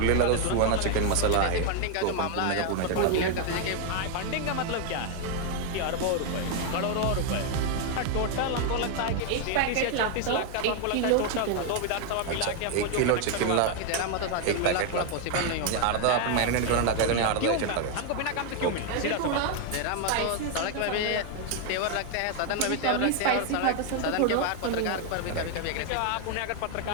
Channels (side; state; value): both; different; correlation 0.01